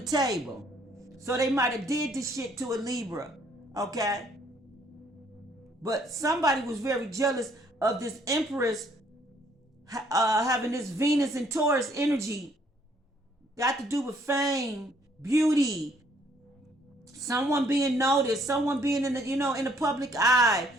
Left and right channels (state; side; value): normal; both; correlation 0.64